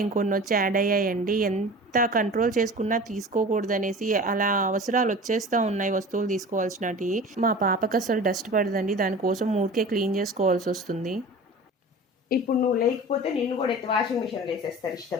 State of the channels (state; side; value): normal; both; correlation 0.37